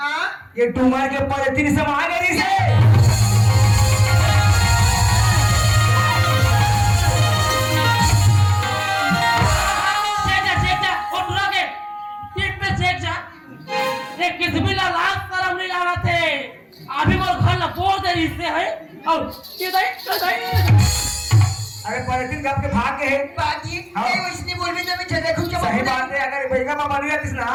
ये डूमर के ऊपर 3 समा गई से चेक जा और दूरा के पीठ पे चेक जा एक किस्मिला लाख करम नहीं लाना थे अभी वो घर ना बोल दे इससे है और ये दे अरे पॉलिथीन कब के भाग के है बाजी हाँ। ये इसने बोल में जब चले खूब सही बात है अगर बेगा मामा नहीं आती ना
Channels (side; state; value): both; identical; correlation 1.00